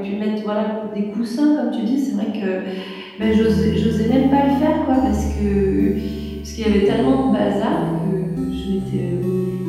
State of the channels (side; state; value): both; identical; correlation 1.00